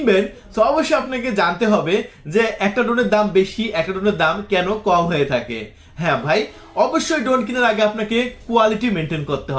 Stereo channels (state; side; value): identical; both; correlation 1.00